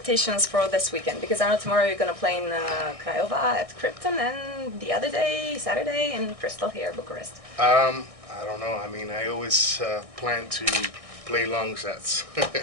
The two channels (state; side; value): late; left; 1.6 ms